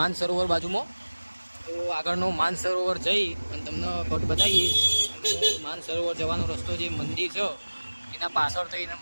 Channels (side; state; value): both; inverted; correlation -1.00